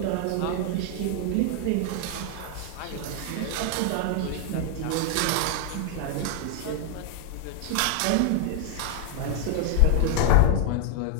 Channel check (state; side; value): different; both; correlation 0.00